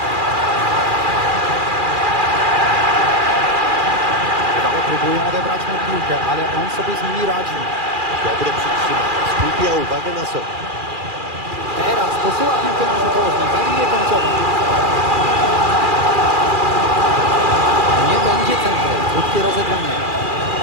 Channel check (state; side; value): late; left; 2.4 ms